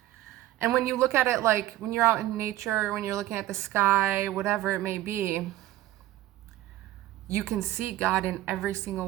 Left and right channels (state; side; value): quieter; left; 15.1 dB